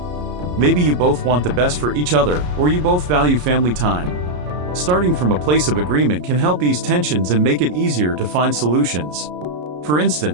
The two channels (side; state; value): left; late; 33 ms